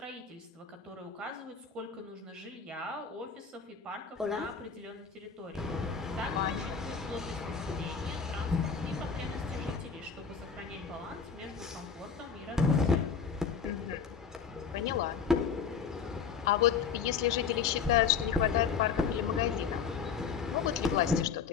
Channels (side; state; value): right; quieter; 6.3 dB